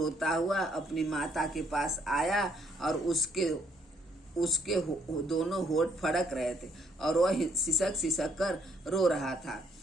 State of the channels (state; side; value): normal; both; correlation 0.69